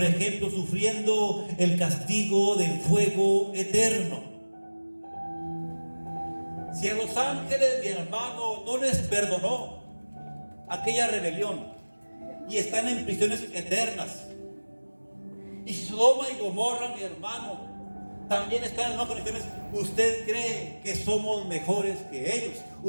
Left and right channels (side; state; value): both; inverted; correlation -1.00